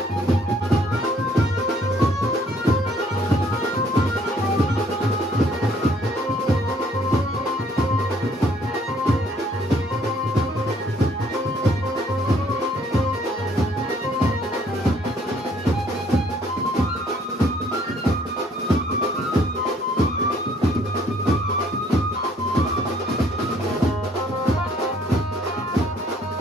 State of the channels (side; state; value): both; normal; correlation 0.63